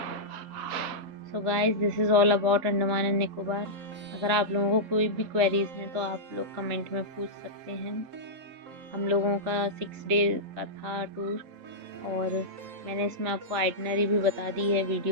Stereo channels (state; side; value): late; left; 3.7 ms